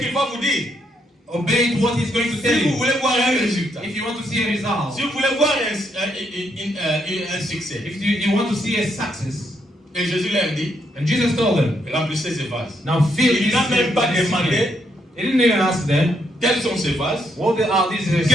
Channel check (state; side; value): normal; both; correlation 0.75